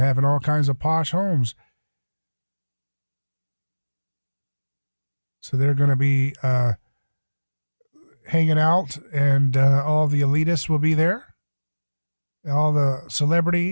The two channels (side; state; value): both; inverted; correlation -1.00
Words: all kinds of posh homes. So they're going to be hanging out, and all the elitists will be there. All the